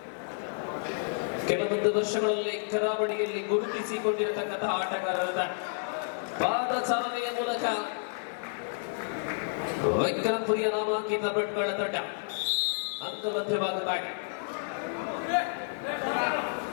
ಕೆಲವೊಂದು ವರ್ಷಗಳಲ್ಲಿ ಕರಾವಳಿಯಲ್ಲಿ ಗುರುತಿಸಿಕೊಂಡಿರತಕ್ಕಂತಹ ಆಟಗಾರರ ಪಾದಚಾಲನೆಯ ಮೂಲಕ ವಿಕ್ರಮ್ ಪುರಿಯ ನಾಮಾಂಕಿತ ಭಟ್ಗಳ ತಂಡ ಅಂಕಮಧ್ಯವಾಗುತ್ತಾರೆ.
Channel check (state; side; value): silent; right; digital silence